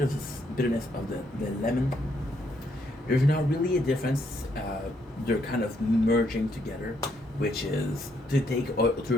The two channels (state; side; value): normal; both; correlation 0.73